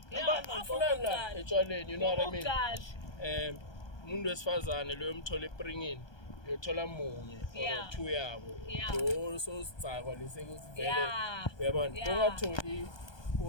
afuna etshwaleni, you know what I mean. Umuntu wesifazane lo yomthola ePringini uyothola munye or two yabo lo so sicakwa lesekuthi vele uyabona ungatholi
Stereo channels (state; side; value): late; right; 1.2 ms